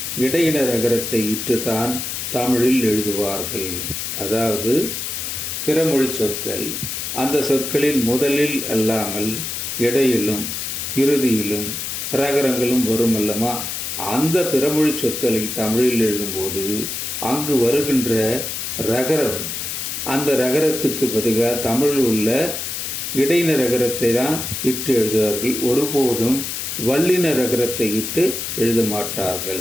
இடையின ரகரத்தை இட்டுத்தான் தமிழில் எழுதுவார்கள். அதாவது பிறமொழி சொற்கள் அந்த சொற்களில் முதலில் அல்லாமல் இடையிலும் இறுதியிலும் ரகரங்களும் வரும் அல்லமா, அந்த பிறமொழி சொற்களை தமிழில் எழுதும்போது அங்கு வருகின்ற ரகரம், அந்த ரகரத்துக்கு பதிலாக தமிழில் உள்ள இடையின ரகரத்தை தான் இட்டு எழுதுவார்கள். ஒருபோதும் வல்லின ரகரத்தை இட்டு எழுத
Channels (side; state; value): left; noise; hiss, 4 dB below the sound